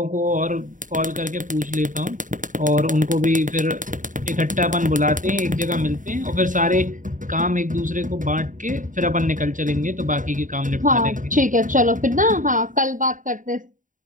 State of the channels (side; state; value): left; late; 0.38 ms